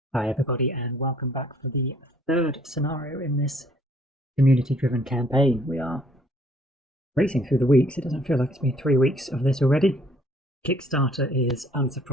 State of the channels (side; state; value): both; normal; correlation 0.61